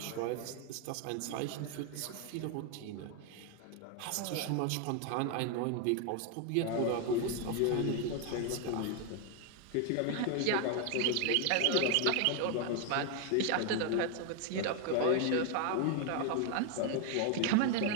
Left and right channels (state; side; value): different; both; correlation 0.01